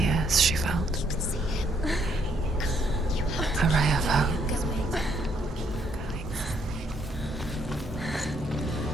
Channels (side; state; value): both; normal; correlation 0.71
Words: years, she felt a ray of hope.